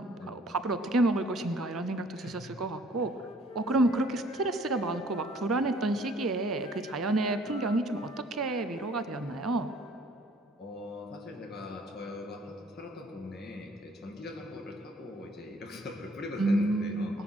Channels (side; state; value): both; normal; correlation 0.57